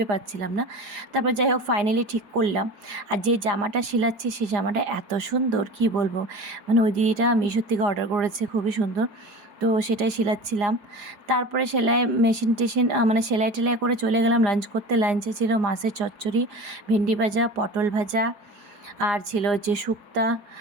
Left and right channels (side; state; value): left; late; 4.9 ms